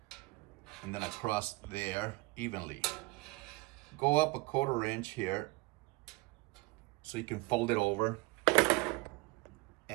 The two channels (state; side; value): quieter; left; 23.3 dB